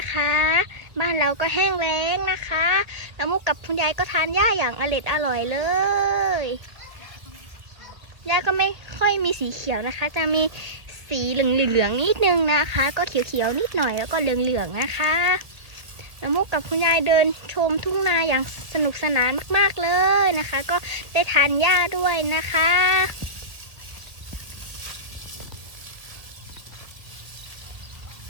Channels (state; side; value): late; left; 1.5 ms